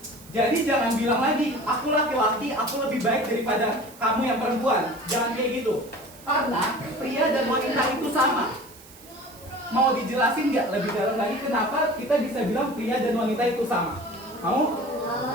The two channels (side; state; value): right; noise; hiss, 21 dB below the sound